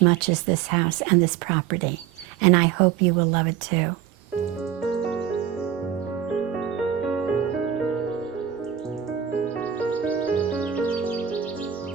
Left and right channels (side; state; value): left; quieter; 9.5 dB